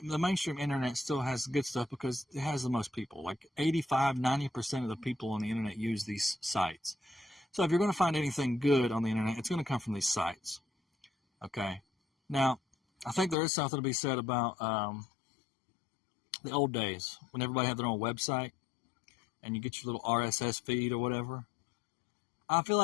still has good stuff because it has the most people. Like 85-90% of the people on the internet use these sites. So if you're going to find anything good on the internet, it's going to come from these sites. Okay. Now, I think there is something to be said about the old days when everybody had their own website and you get your little RSS feed or whatever. I feel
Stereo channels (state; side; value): drops out; right; at 13.4 s